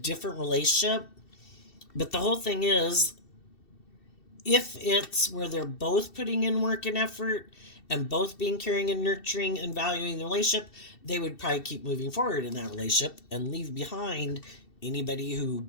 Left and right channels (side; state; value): right; late; 2.7 ms